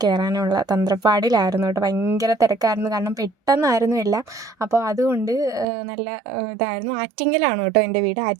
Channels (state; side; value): drops out; left; at 5.7 s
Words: കയറാനുള്ള തന്ത്രപ്പാടിലായിരുന്നു കേട്ടോ. ഭയങ്കര തിരക്കായിരുന്നു. കാരണം പെട്ടെന്നായിരുന്നു എല്ലാം. അപ്പോൾ അതുകൊണ്ട് നല്ല ഇതായിരുന്നു. ആറ്റിങ്ങലാണ് കേട്ടോ എൻ്റെ വീട്.